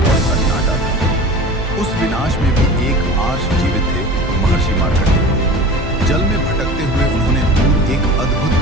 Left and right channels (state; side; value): normal; both; correlation 0.37